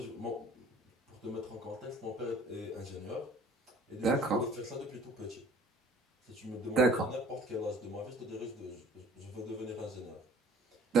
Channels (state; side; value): normal; both; correlation 0.52